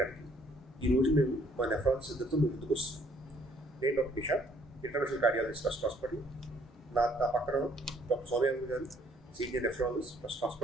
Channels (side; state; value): both; normal; correlation 0.64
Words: ఈరోజు మేము మా నెఫ్రాలజిస్ట్ ఇద్దరితో ముందుకు వస్తున్నాం. నేను doctor Nishad, international cardiologist trust hospital. నా పక్కన డాక్టర్ సోమయాజీ గారు, senior nephrologist trust